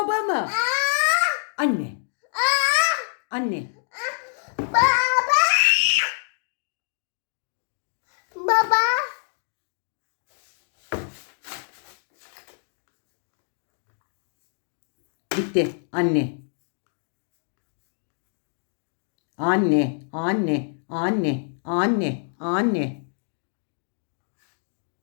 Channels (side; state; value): right; silent; digital silence